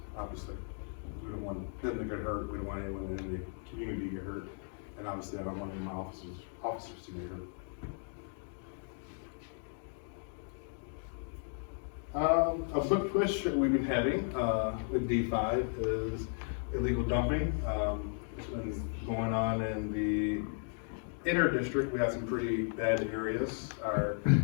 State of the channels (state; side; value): silent; right; 54 dB below the other